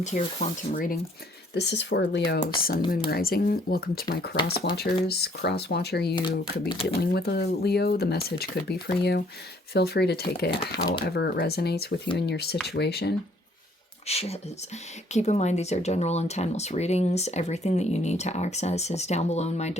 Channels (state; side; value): normal; both; correlation 0.62